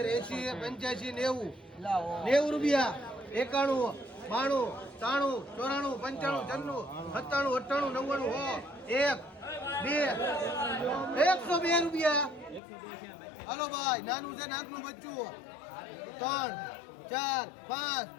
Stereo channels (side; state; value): right; drops out; at 12.6 s